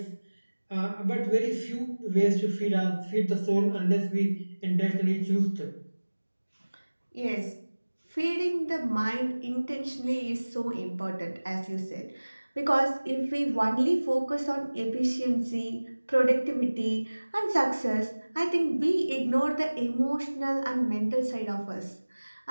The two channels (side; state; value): both; inverted; correlation -1.00